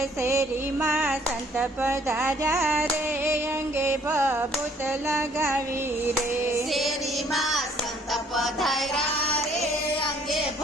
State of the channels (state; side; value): normal; both; correlation 0.61